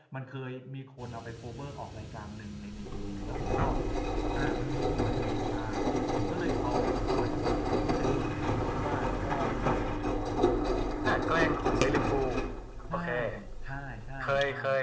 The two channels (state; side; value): identical; both; correlation 1.00